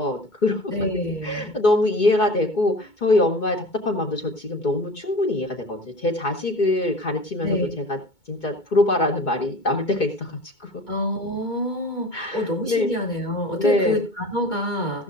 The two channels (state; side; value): late; right; 2.2 ms